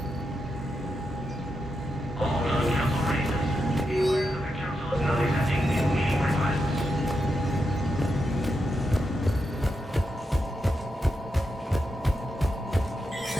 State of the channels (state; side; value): normal; both; correlation 0.85